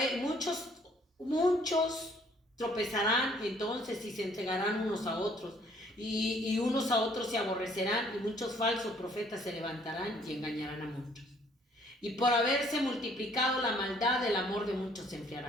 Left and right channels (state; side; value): normal; both; correlation 0.61